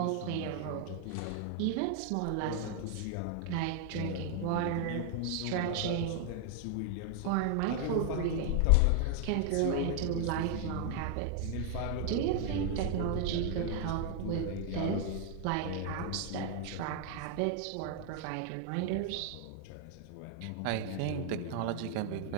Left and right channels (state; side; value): different; both; correlation 0.00